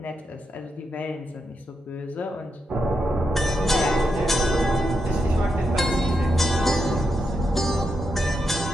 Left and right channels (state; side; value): normal; both; correlation 0.84